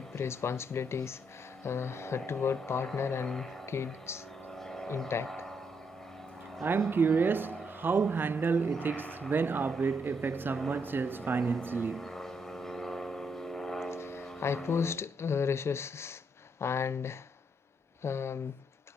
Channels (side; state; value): both; normal; correlation 0.76